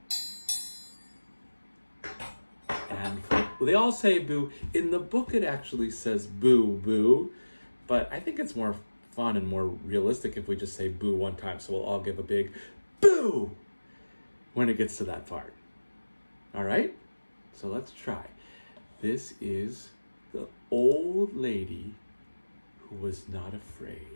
And they all say boo. In the book, it actually says boo, boo. But I think it's more fun and more realistic if we just say boo one time. So we'll all give a big boo when it gets to that part. All right? So let's try. This is the old lady who was not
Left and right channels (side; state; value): both; inverted; correlation -1.00